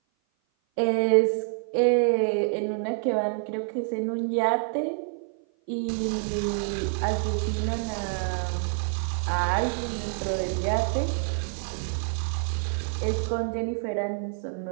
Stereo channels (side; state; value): left; silent; 56 dB below the other